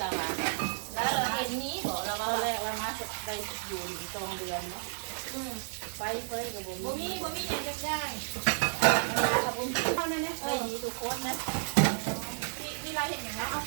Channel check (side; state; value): left; silent; digital silence